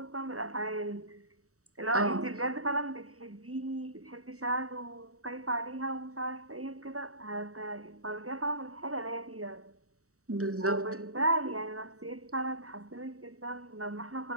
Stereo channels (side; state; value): left; late; 0.65 ms